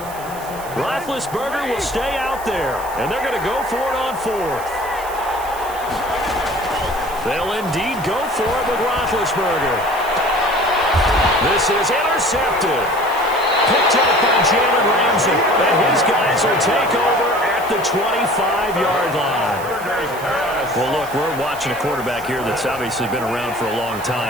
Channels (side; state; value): right; noise; hiss, 16 dB below the sound